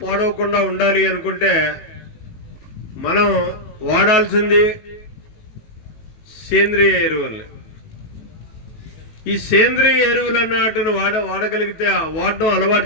పాడవకుండా ఉండాలి అనుకుంటే మనం వాడాల్సింది సేంద్రియ ఎరువుల్ని. ఈ సేంద్రియ ఎరువులు అన్నట్టును వాడగలిగితే, వాడడం అలవాటు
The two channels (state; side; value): late; right; 18 ms